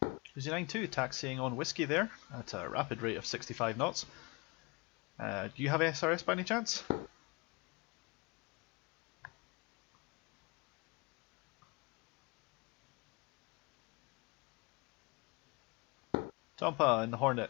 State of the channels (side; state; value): right; quieter; 27.2 dB